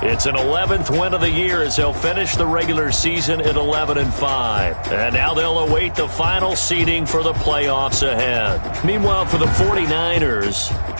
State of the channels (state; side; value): inverted; both; correlation -1.00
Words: it's an 11th win of the year as they'll finish the regular season at 11-5. And now they'll await the final seeding for the playoffs ahead. Meanwhile, for the 49ers,